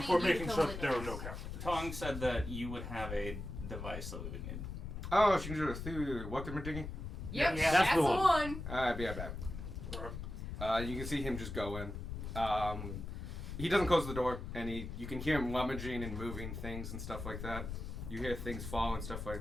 for you to making come sure with that there were us. no captives. Tong said that you would have a device that we would need. Oh, she can do it through weapon digging? Yep, Yeah, that's the the one. Alright, be right back. Alright. You can see him just go in. He doesn't close the door, and you can hear him rummaging and moving things and stuff like that. You hear things fall and stuff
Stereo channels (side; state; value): left; noise; rumble, 7 dB below the sound